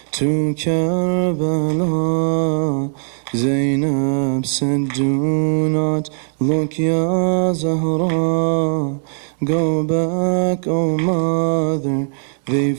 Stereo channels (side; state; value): left; silent; digital silence